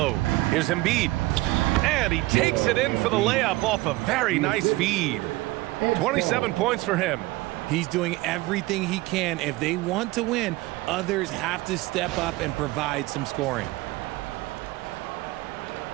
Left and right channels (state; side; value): quieter; left; 19.9 dB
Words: Here's Embiid. And he takes it in for the layup off a very nice feed. 27 points for him. He's doing everything he can. If they want to win, others have to step up and provide some scoring.